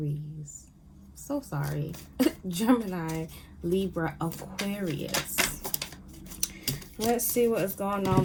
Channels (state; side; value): identical; both; correlation 1.00